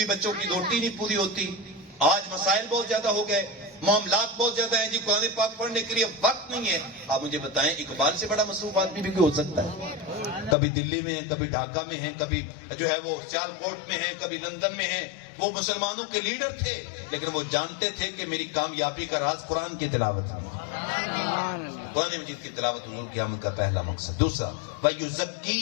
بچوں کی روٹی نہیں پوری ہوتی، آج مسائل بہت زیادہ ہو گئے، معاملات بہت زیادہ ہیں، جی قرآن پاک پڑھنے کے لیے وقت نہیں ہے۔ آپ مجھے بتائیں اقبال سے بڑا مصروف آدمی بھی ہو سکتا ہے؟ کبھی دلی میں ہیں، کبھی ڈھاکہ میں ہیں، کبھی جو ہے وہ سیال کوٹ میں ہیں، کبھی لندن میں ہیں۔ وہ مسلمانوں کے لیڈر تھے، لیکن وہ جانتے تھے کہ میری کامیابی کا راز قرآن کی تلاوت ہے۔ قرآن مجید کی تلاوت حضور کی آمد کا پہلا مقصد۔ دوسرا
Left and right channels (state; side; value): drops out; right; at 10.6 s